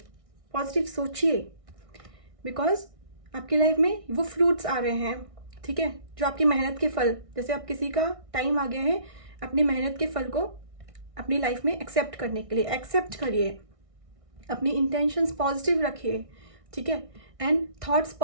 पॉजिटिव सोचिए, बिकॉज आपकी लाइफ में वो फ्रूट्स आ रहे हैं, ठीक है, जो आपकी मेहनत के फल, जैसे अब किसी का टाइम आ गया है अपनी मेहनत के फल को अपनी लाइफ में एक्सेप्ट करने के लिए, एक्सेप्ट करिए, अपनी इंटेंशंस पॉजिटिव रखिए, ठीक है, एंड थॉट्स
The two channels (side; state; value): left; late; 1.6 ms